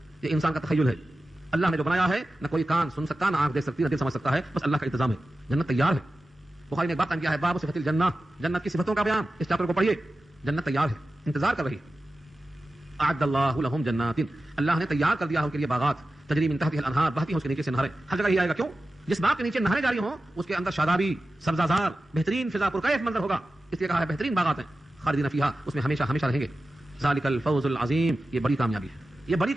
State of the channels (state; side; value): normal; both; correlation 0.94